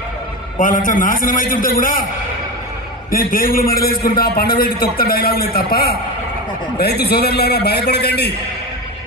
వాళ్ళంతా నాశనం అవుతుంటే కూడా నేను పేగులు మెడలేసుకుంటా పండబెట్టి తొక్త డైలాగులే తప్ప రైతు సోదరులారా భయపడకండి.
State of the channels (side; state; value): both; normal; correlation 0.21